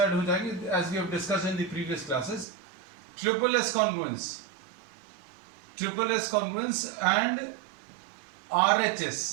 हो जाएंगे as we have discussed in the previous classes. Triple S congruence and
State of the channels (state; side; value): drops out; left; at 2.5 s